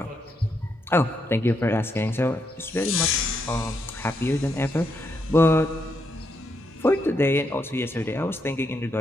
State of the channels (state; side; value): normal; both; correlation 0.79